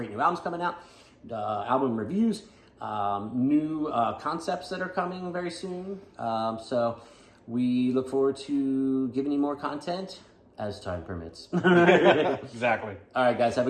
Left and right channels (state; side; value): identical; both; correlation 1.00